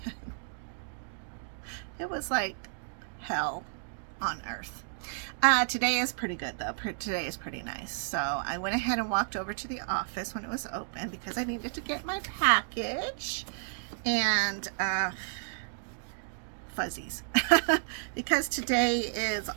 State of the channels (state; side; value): silent; left; digital silence